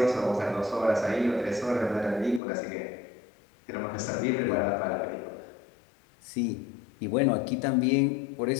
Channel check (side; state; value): right; drops out; at 2.4 s